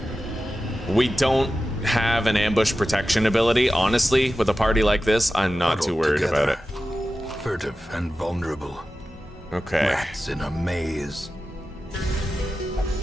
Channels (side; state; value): both; normal; correlation 0.93